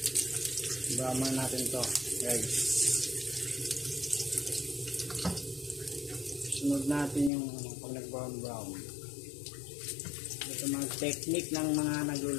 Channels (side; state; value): right; drops out; at 7.3 s